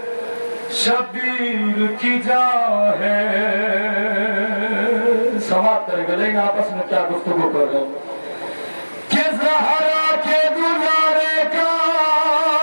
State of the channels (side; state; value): both; inverted; correlation -1.00